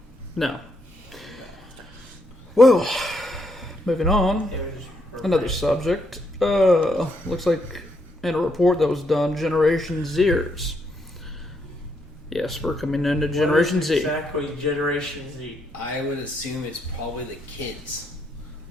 No. Well, moving on. It was Another subject. Looks like in a report that was done, Generation Zers. Yes, we're coming into Generation What is Z. Exactly, Generation Z. I would assume it's probably the kids.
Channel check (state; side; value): normal; both; correlation 0.76